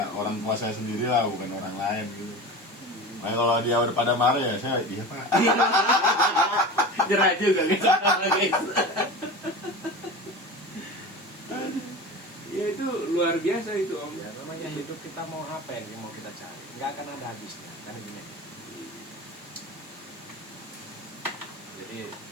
orang tua saya sendiri lah, bukan orang lain gitu. Nah, kalau dia udah pada marah ya saya iya Pak. Jerah juga guys. Ya itu luar biasa itu Om. Ya namanya hidup kita mau apa yang mau kita cari, nggak akan ada habisnya kan ini. Jadi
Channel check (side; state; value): both; normal; correlation 0.31